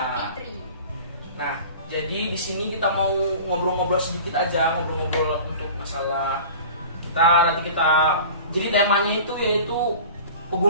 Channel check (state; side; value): inverted; both; correlation -0.39